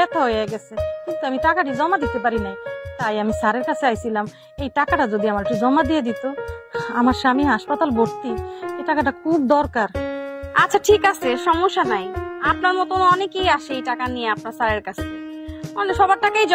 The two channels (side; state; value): both; identical; correlation 1.00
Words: হয়ে গেছে, কিন্তু আমি টাকাটি জমা দিতে পারি নাই। তাই আমি স্যারের কাছে আইছিলাম, এই টাকাটা যদি আমার একটু জমা দিয়ে দিত। আমার স্বামী হাসপাতাল ভর্তি, এই টাকাটা খুব দরকার। আচ্ছা ঠিক আছে, সমস্যা নাই। আপনার মতন অনেকেই আসে এই টাকা নিয়ে আপনার স্যারের কাছে, মানে সবার টাকাই